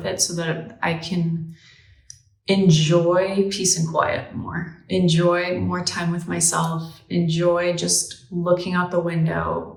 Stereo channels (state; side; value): identical; both; correlation 1.00